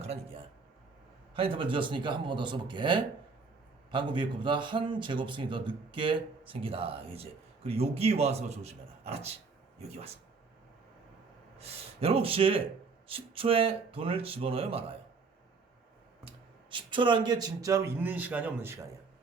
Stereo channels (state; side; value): quieter; left; 4.6 dB